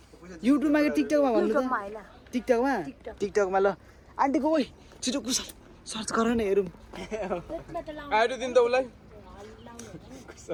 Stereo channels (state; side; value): identical; both; correlation 1.00